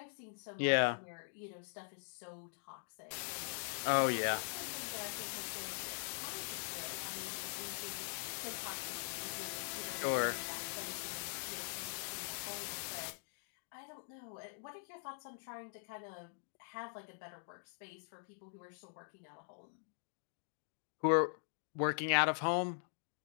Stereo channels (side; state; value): right; silent; digital silence